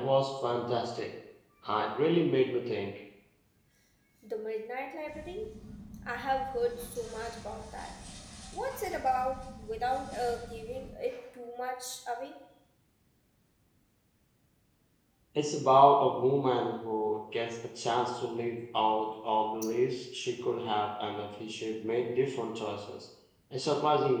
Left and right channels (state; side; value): identical; both; correlation 1.00